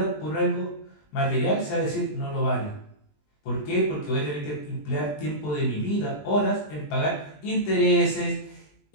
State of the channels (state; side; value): late; right; 20 ms